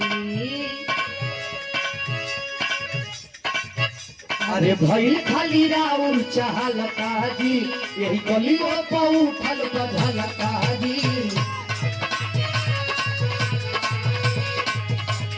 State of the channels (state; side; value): identical; both; correlation 1.00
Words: अरे भई खाली राउर चहल काजी यही गलियों पर उठल बधल काजी।